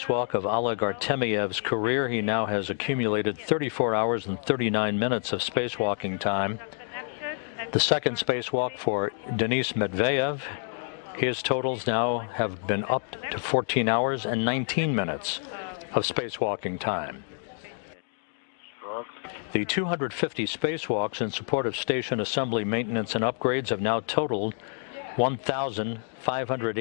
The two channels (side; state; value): right; silent; 59 dB below the other